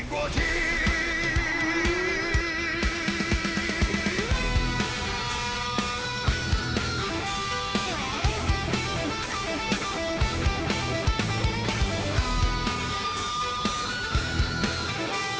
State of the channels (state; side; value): identical; both; correlation 1.00